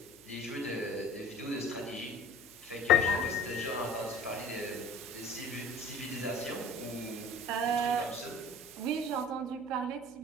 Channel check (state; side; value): noise; left; hum, 29 dB below the sound